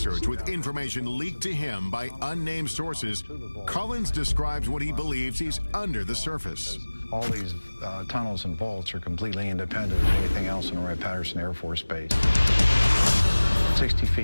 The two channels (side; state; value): both; inverted; correlation -1.00